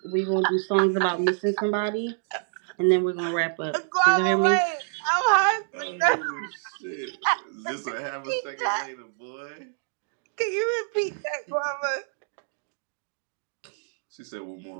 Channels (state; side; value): silent; left; digital silence